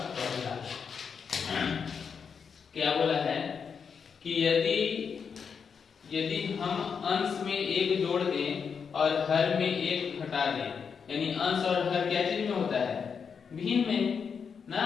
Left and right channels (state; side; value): quieter; right; 6.3 dB